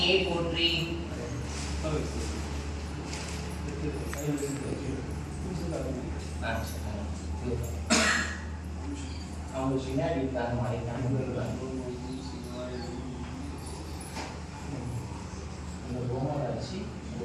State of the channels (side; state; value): both; identical; correlation 1.00